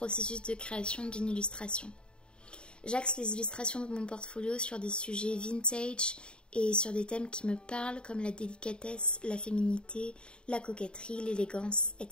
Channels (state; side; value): late; right; 0.052 ms